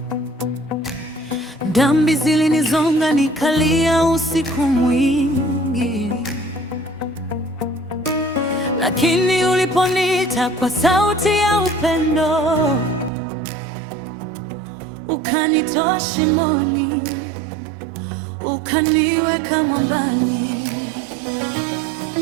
dhambi zilinizonga nikalia usiku mwingi, lakini uliponiita kwa sauti ya upendo, ukanitoa shimoni, ukaniweka mwambani.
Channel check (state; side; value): drops out; left; at 13.1 s